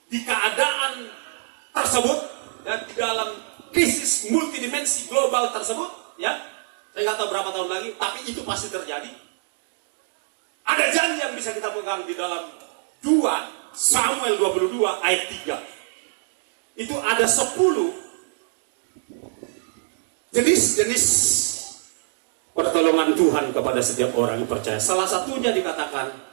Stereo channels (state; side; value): silent; left; digital silence